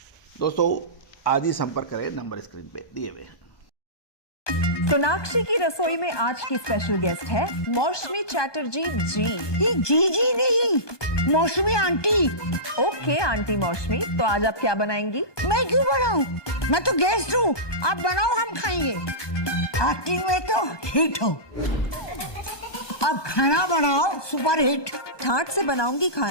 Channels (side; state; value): right; late; 1.2 ms